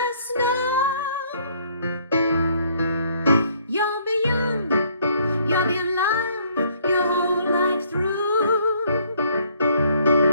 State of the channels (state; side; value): inverted; both; correlation -0.64